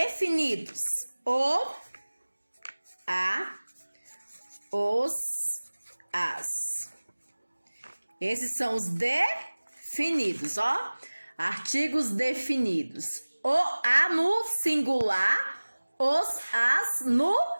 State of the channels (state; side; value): inverted; both; correlation -1.00